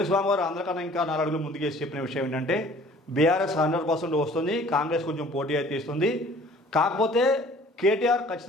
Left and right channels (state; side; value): normal; both; correlation 0.52